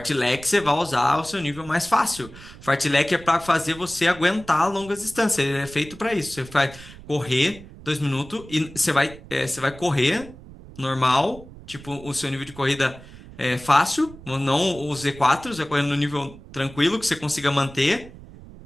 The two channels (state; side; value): noise; right; rumble, 18 dB below the sound